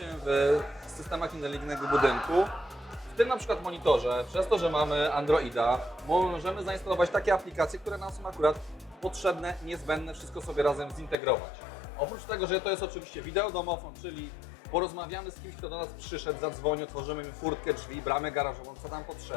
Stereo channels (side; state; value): right; drops out; at 11.2 s